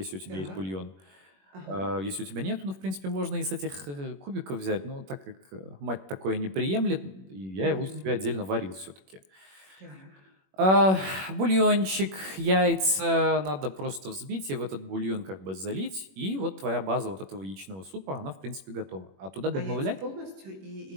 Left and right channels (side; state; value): left; late; 21 ms